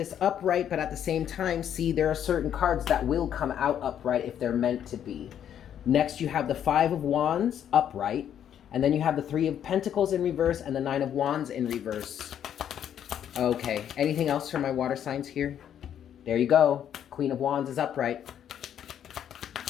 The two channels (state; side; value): quieter; right; 9.6 dB